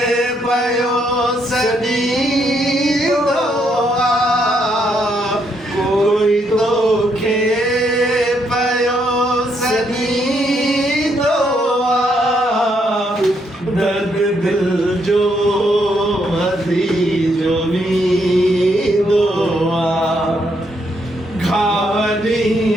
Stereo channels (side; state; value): both; normal; correlation 0.75